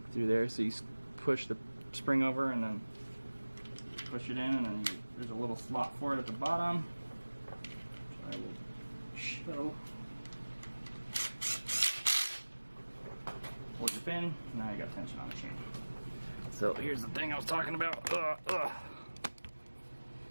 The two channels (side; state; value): both; inverted; correlation -1.00